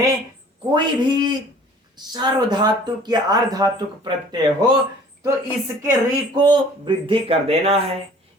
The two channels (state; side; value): normal; both; correlation 0.50